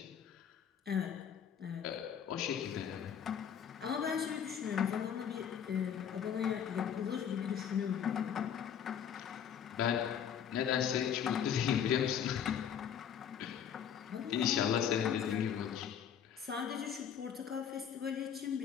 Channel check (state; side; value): quieter; right; 8.4 dB